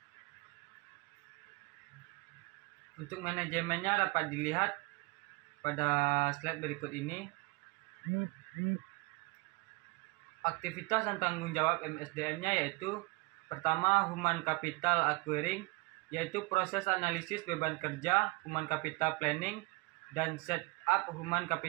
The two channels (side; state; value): left; quieter; 24.9 dB